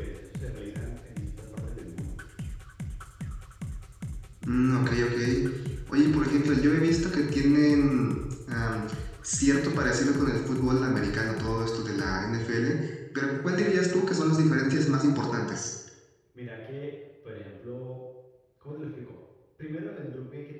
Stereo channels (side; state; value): both; identical; correlation 1.00